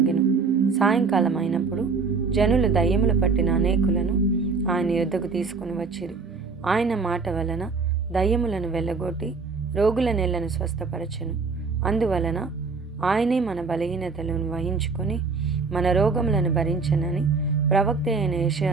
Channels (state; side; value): quieter; left; 4.6 dB